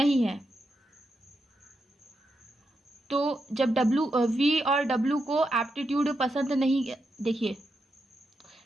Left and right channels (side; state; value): both; normal; correlation 0.85